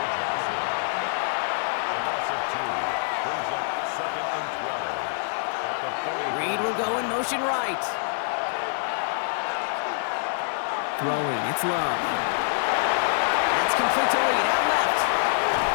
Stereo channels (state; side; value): silent; right; 59 dB below the other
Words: Reed will go in motion right. Throwing, it's Love. That's complete to Reed, out left.